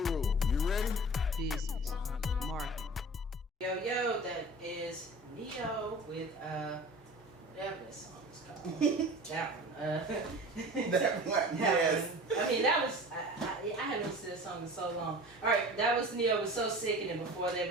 you ready? Business, marketing. Yo, that is Neo with whatever that song is called. That one. That one, yes. I mean, that was I haven't listened to this song in so long. All right, that was Neo was So Sick, and then before that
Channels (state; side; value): normal; both; correlation 0.38